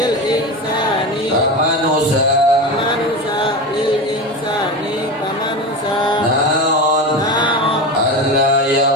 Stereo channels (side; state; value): both; normal; correlation 0.23